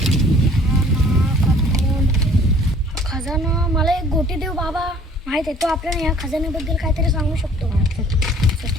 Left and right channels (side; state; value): both; normal; correlation 0.54